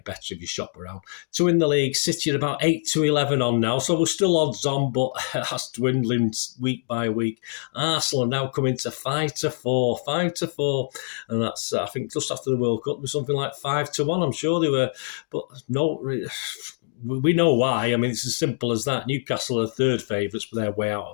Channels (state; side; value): silent; right; digital silence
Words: better if you shop around. To win the league, City are about 8-11 on now, so we're still odds on, but that's dwindling week by week. Arsenal are now coming to 5-4, and that's, I think, just after the World Cup, it was something like 5-1. I'm sure they were, but no. We know why. I mean, it's as simple as that. Newcastle are third favourites, but they're way out